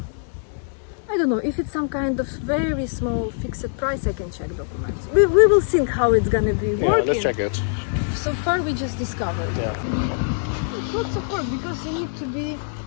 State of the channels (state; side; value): silent; right; 63 dB below the other